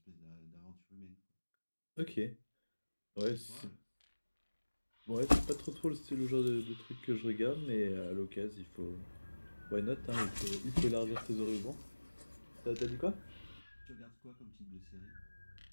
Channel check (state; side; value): inverted; both; correlation -1.00